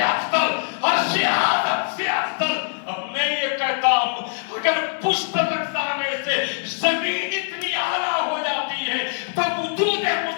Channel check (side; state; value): right; silent; 64 dB below the other